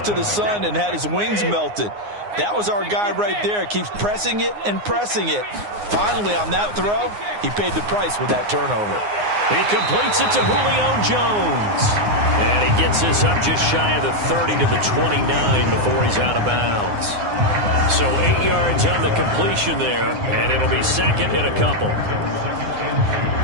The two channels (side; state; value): left; late; 9.6 ms